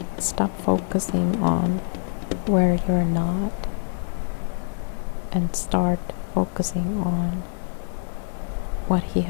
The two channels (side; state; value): right; silent; digital silence